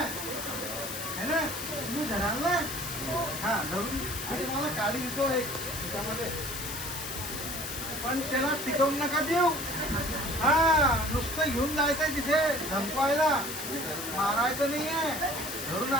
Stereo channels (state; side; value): noise; left; hiss, 6 dB below the sound